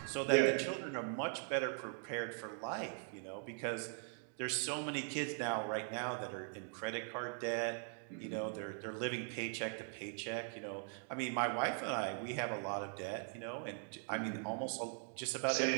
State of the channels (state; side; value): silent; left; 50 dB below the other